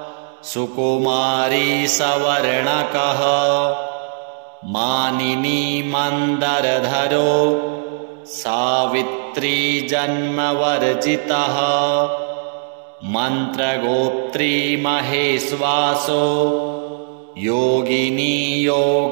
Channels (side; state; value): left; silent; digital silence